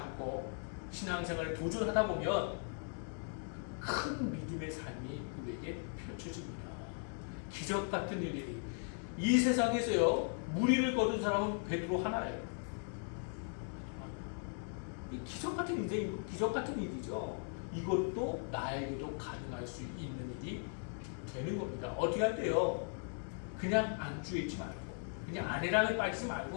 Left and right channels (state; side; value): silent; right; 52 dB below the other